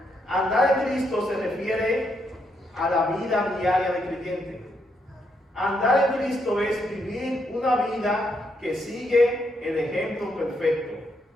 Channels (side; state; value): both; normal; correlation 0.78